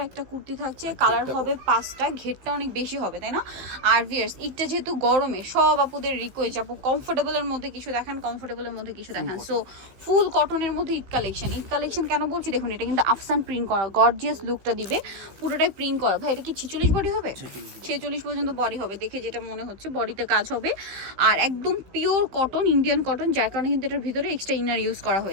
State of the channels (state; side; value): late; left; 15 ms